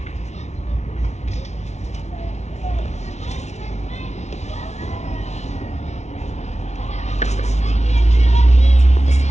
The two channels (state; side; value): late; right; 0.32 ms